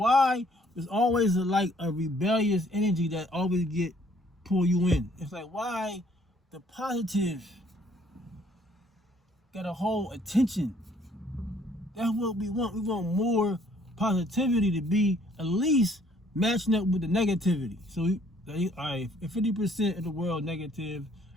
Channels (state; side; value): normal; both; correlation 0.62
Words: There's always a rebellious energy that always pull you in. It's like, why the positive gotta hold attention? That's what we want. We want more positivity to be at least matching up with the negativity. So, all right, if 50% of the world negative,